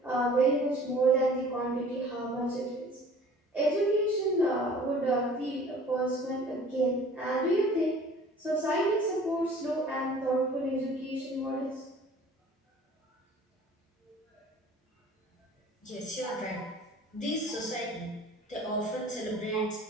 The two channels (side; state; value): both; normal; correlation 0.48